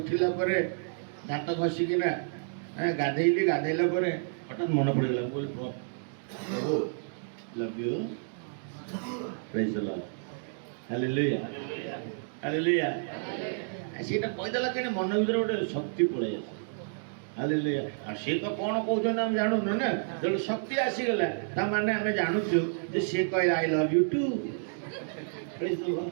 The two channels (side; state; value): left; silent; digital silence